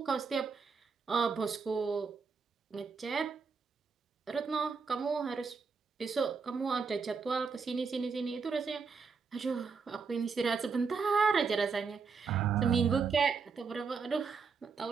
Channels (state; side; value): quieter; left; 5.2 dB